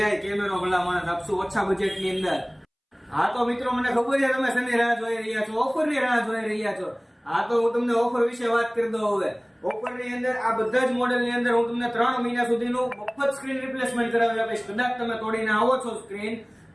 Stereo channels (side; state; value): both; identical; correlation 1.00